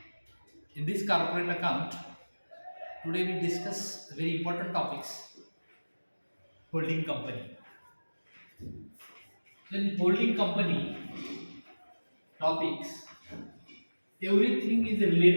In this corporate account, today we discuss very important topics. Holding company. In holding company topics, everything is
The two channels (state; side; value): inverted; both; correlation -1.00